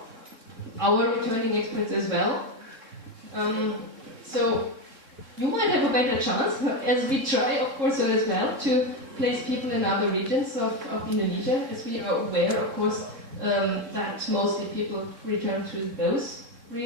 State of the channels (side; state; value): left; late; 3.6 ms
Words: our returning experts as well. So you might have a better chance, as we try, of course, as well, to place people in other regions of Indonesia, as we are aware, of course, that mostly people return to those